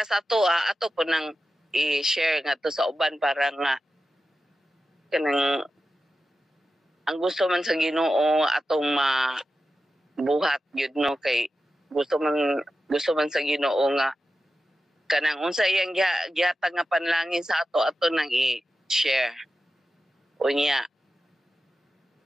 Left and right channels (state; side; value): normal; both; correlation 0.92